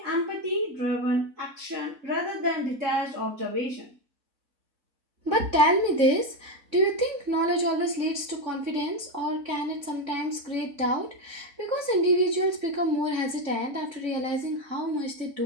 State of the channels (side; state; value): left; late; 3.6 ms